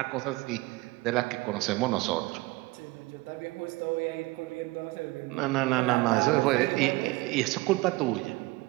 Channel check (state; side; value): quieter; left; 21.5 dB